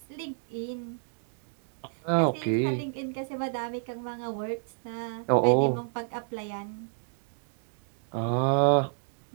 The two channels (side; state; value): left; silent; digital silence